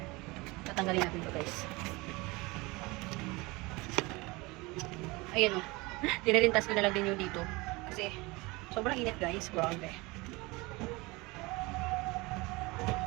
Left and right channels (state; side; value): quieter; left; 23.7 dB